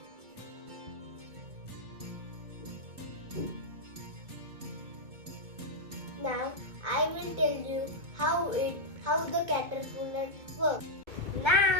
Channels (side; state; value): left; late; 2.2 ms